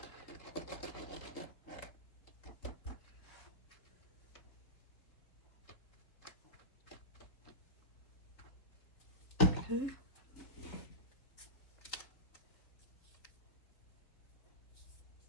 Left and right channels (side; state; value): right; late; 4.0 ms